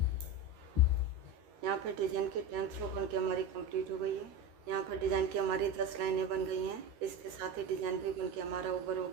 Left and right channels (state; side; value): late; left; 13 ms